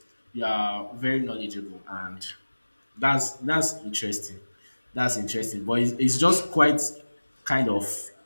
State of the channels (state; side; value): inverted; both; correlation -1.00